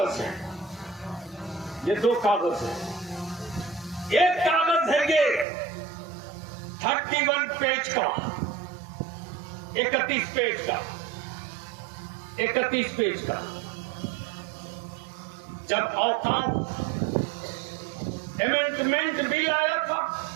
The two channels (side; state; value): left; drops out; at 5.5 s